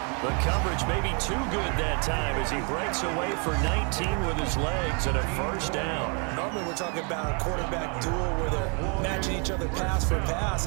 The coverage may be too good that time as he breaks away for 19 with his legs and a 1st down. Normally we're talking about a quarterback duel where they're matching each other pass for pass.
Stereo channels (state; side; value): quieter; left; 36.6 dB